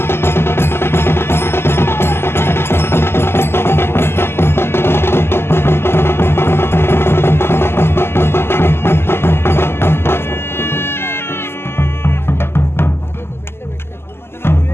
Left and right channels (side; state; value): right; late; 0.12 ms